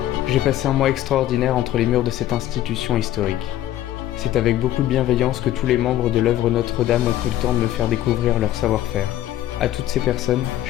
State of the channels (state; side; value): quieter; right; 13.1 dB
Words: J'ai passé un mois extraordinaire entre les murs de cette institution historique. C'est avec beaucoup de bienveillance que tous les membres de l'œuvre Notre-Dame ont pris le temps de me faire découvrir leur savoir-faire. À toutes ces personnes,